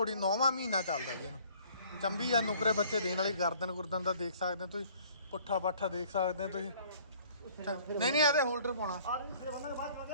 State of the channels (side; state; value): both; inverted; correlation -0.56